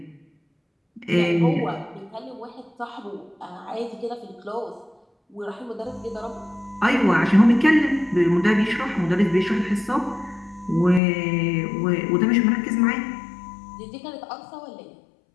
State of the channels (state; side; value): drops out; right; at 11.0 s